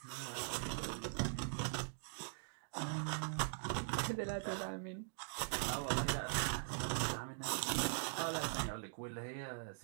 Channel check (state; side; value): silent; left; digital silence